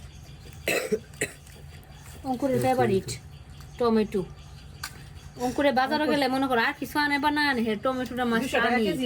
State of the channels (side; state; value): both; identical; correlation 1.00